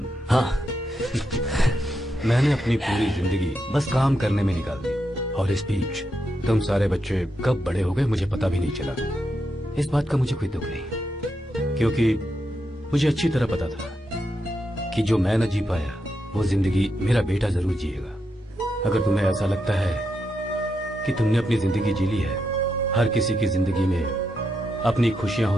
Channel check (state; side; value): normal; both; correlation 0.83